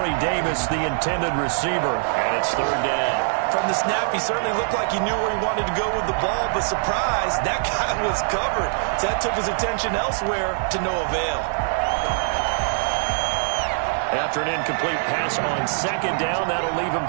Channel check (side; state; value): left; silent; 60 dB below the other